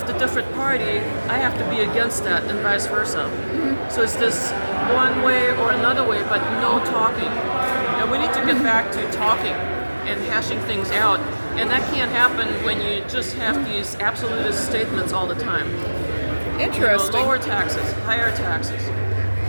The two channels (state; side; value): inverted; both; correlation -1.00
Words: the different party, I have to be against that, and vice versa. So it's this one way or another way, but no talking. And we need to get back to talking and hashing things out. And that can't happen when you just have these absolutist statements all the time. interesting. Lower taxes, higher taxes.